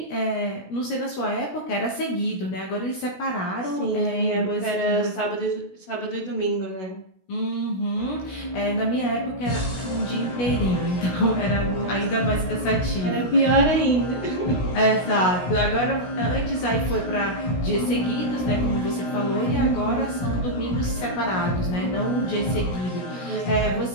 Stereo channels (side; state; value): right; late; 16 ms